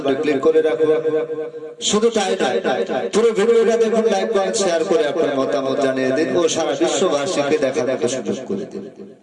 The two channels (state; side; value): identical; both; correlation 1.00